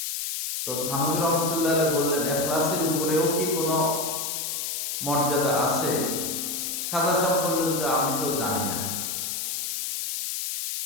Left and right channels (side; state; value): left; noise; hiss, 3 dB below the sound